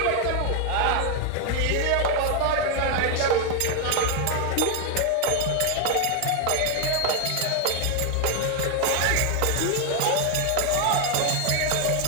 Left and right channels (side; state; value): both; different; correlation 0.00